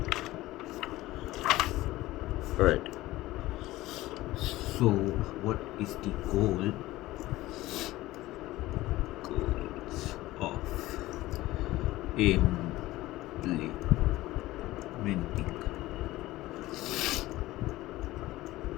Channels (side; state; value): right; quieter; 17.4 dB